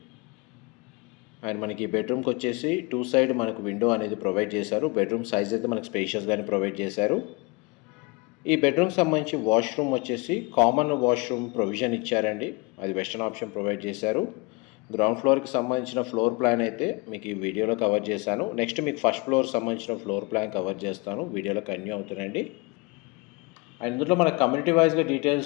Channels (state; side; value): quieter; right; 27.6 dB